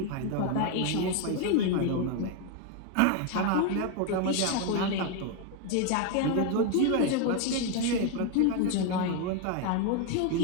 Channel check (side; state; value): both; different; correlation 0.01